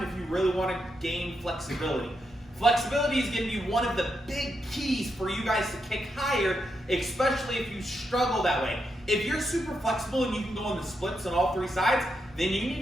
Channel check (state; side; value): normal; both; correlation 0.83